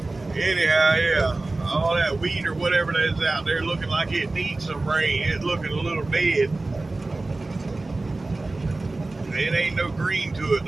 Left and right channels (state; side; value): quieter; left; 3.1 dB